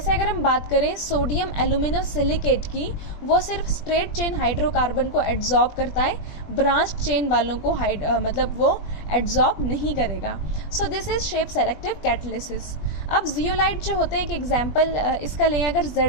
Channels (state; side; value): late; right; 20 ms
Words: अगर हम बात करें सोडियम एल्यूमिनोसिलिकेट की, वो सिर्फ स्ट्रेट चेन हाइड्रोकार्बन को एब्जॉर्ब करता है, ब्रांच चेन वालों को मतलब वो एब्जॉर्ब नहीं करेगा। सो this is shape selective catalysis. अब जियोलाइट जो होते हैं, एक एग्जाम्पल इसका लें अगर